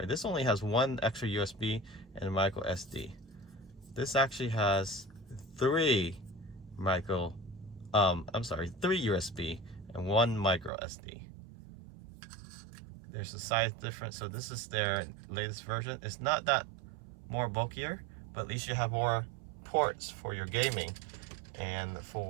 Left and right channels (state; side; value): drops out; left; at 10.7 s